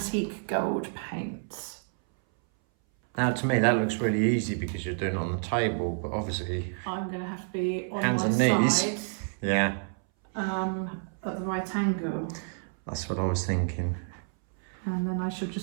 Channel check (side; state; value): left; silent; 59 dB below the other